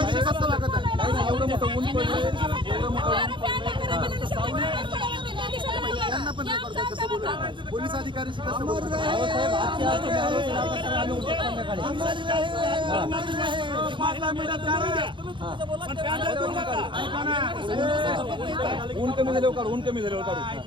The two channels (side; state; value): left; late; 0.23 ms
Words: कसं वागत आहे एवढं मोठं ऊन पडलं त्यांना पण नाही करतात कसं बोलत पोलीस अधिकाऱ्याशी कसं बोलत ऊन कमी झाल्यावर काढू ऊन कमी झाल्यावर काढू